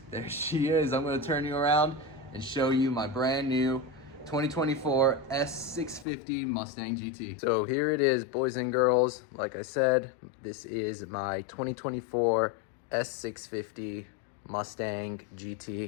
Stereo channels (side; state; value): right; drops out; at 6.1 s